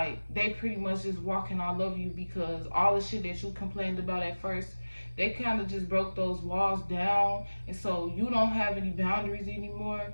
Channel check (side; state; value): both; inverted; correlation -1.00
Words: they pretty much just walking all over you, because all the shit that you complained about at first, they kind of just broke those walls down, and so you don't have any boundaries anymore,